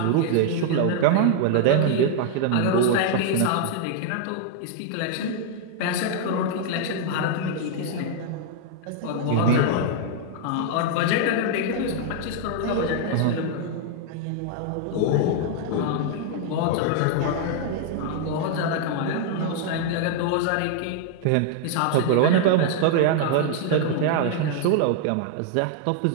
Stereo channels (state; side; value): different; both; correlation -0.01